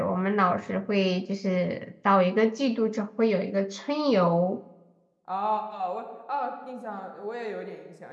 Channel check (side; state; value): both; identical; correlation 1.00